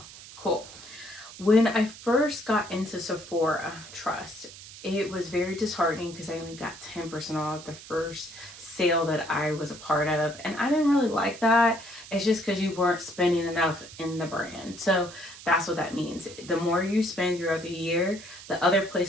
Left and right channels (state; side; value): noise; right; hiss, 16 dB below the sound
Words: Cool. When I first got into Sephora, trust, it was very disheartening because I only got 10% off the first sale that I was a part of. And I didn't really like that. It's just because you weren't spending enough in the brand. So that's what that means. The more you spend throughout the year, the other